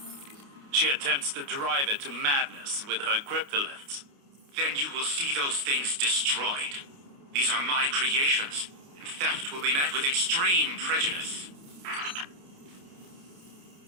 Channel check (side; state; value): left; late; 29 ms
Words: She attempts to drive it to madness with her cryptoliths. Then you will see those things destroyed. These are my creations, and theft will be met with extreme prejudice.